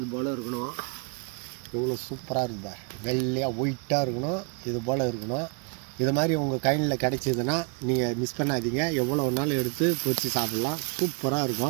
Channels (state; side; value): quieter; left; 34.6 dB